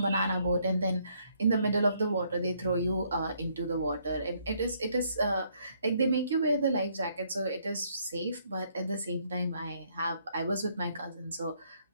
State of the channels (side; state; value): both; inverted; correlation -0.69